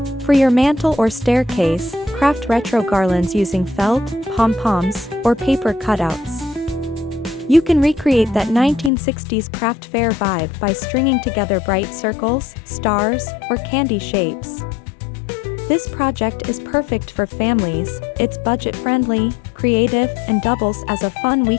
For your mantel or staircase, craft retro garlands using felt, pom-poms, or paper cutouts. You can recreate that 1960s craft fair vibe by stringing together bright circles, stars, or candy shapes. This project is perfect for families, it's budget-friendly, creative, and doubles as a fun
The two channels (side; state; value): right; drops out; at 8.9 s